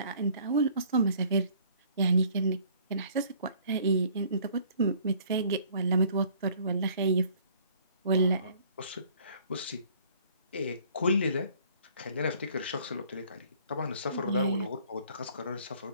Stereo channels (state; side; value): inverted; both; correlation -0.56